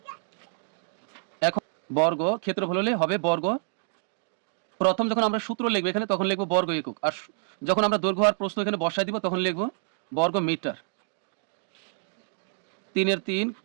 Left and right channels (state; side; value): silent; left; digital silence